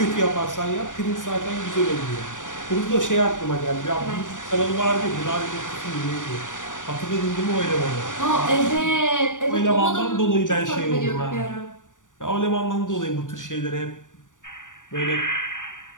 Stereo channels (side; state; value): right; late; 0.87 ms